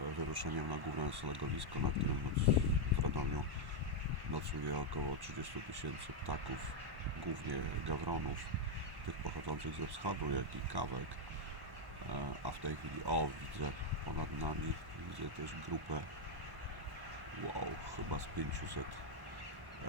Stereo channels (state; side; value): late; left; 1.1 ms